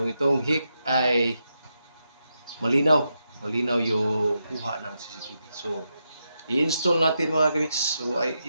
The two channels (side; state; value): both; inverted; correlation -0.85